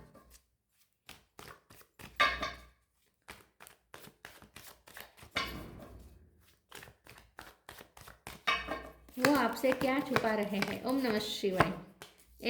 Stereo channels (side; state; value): both; identical; correlation 1.00